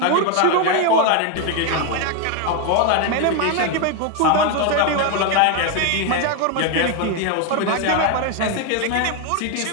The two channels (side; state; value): both; different; correlation 0.01